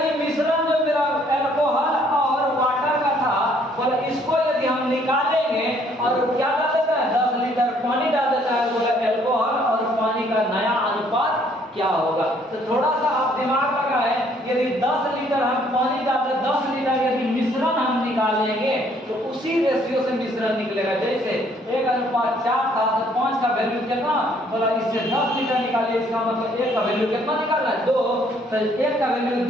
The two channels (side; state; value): both; normal; correlation 0.64